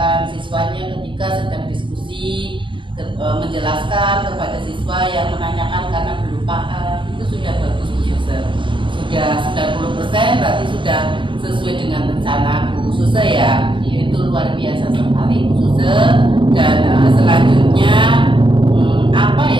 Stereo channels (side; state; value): left; late; 0.24 ms